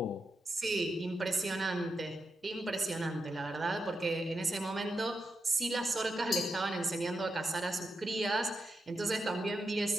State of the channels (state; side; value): normal; both; correlation 0.87